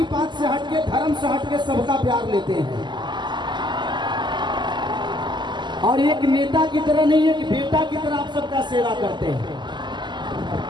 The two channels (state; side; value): late; left; 0.21 ms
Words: पात से हटके, धर्म से हटके सबका प्यार लेते हैं, और एक नेता की तरह नहीं, एक बेटा की तरह आप सबका सेवा करते